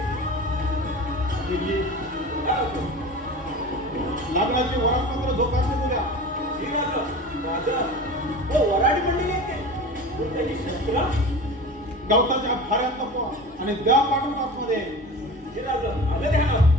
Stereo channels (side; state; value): both; normal; correlation 0.34